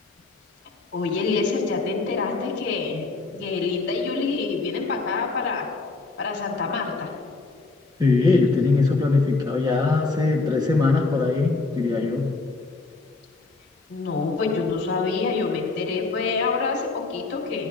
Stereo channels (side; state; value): right; quieter; 3.6 dB